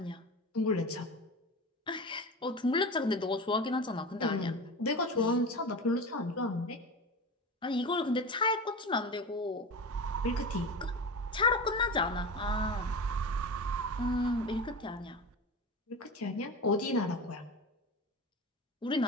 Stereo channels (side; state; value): both; normal; correlation 0.28